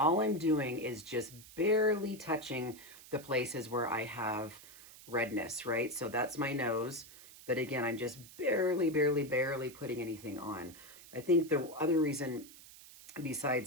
I'm doing is just barely touching the places where I have redness, right? So that's my nose. But again, I'm just barely putting anything on. I think the other reason,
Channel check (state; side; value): noise; right; hiss, 19 dB below the sound